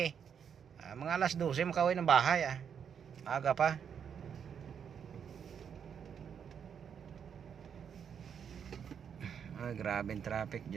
Mga alas 12 makauwi ng bahay. Aga pa. Ay, grabe yung traffic,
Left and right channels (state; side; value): quieter; left; 7.6 dB